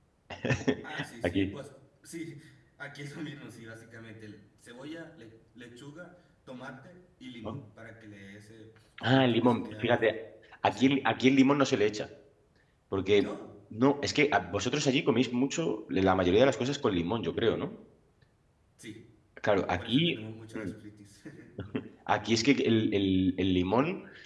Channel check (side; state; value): both; identical; correlation 1.00